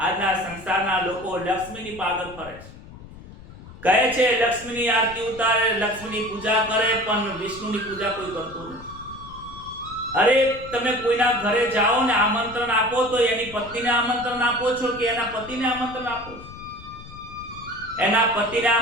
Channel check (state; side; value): noise; left; rumble, 17 dB below the sound